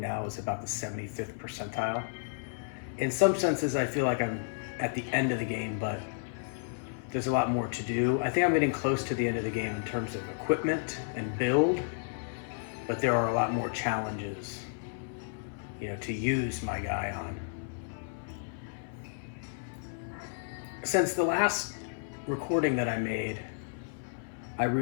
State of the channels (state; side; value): silent; right; 56 dB below the other